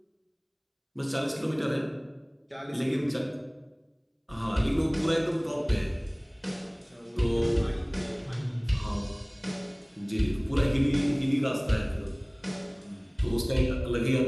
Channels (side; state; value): both; identical; correlation 1.00